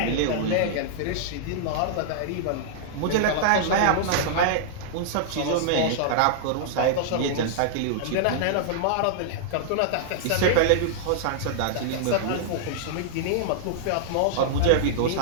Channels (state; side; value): different; both; correlation -0.02